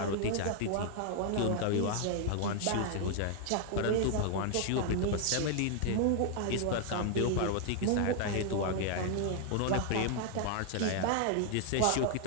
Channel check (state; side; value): different; both; correlation 0.00